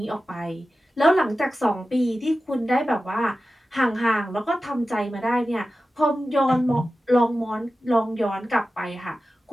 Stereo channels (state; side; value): normal; both; correlation 0.94